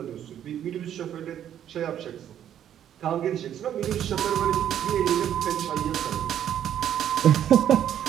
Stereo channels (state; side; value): quieter; left; 10.2 dB